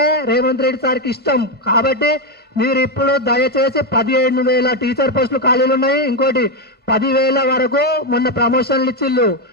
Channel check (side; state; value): left; late; 1.5 ms